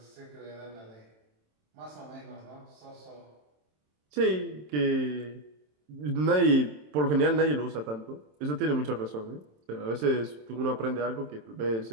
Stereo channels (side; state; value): left; late; 27 ms